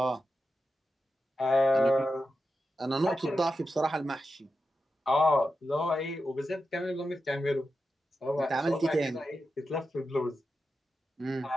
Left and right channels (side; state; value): both; normal; correlation 0.89